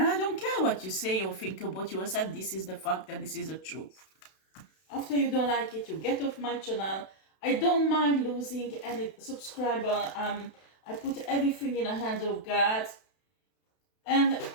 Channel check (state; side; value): late; right; 32 ms